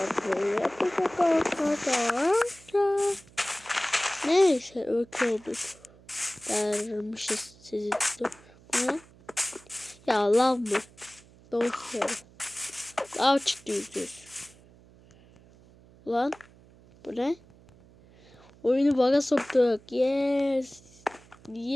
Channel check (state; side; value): noise; right; hum, 25 dB below the sound